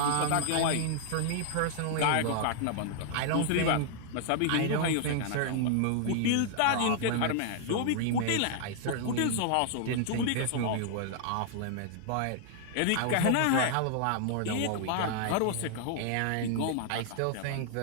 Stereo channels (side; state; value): both; different; correlation -0.01